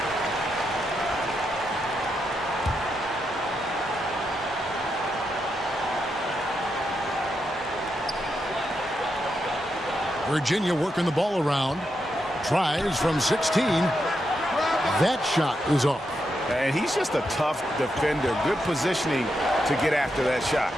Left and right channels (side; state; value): both; normal; correlation 0.84